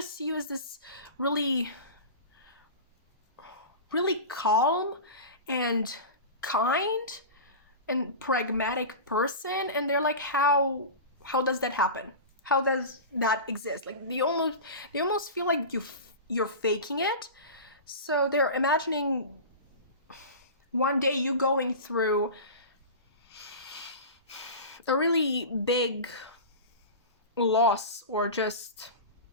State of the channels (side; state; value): both; inverted; correlation -0.30